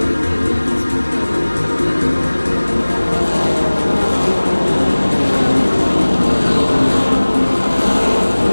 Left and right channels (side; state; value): both; inverted; correlation -1.00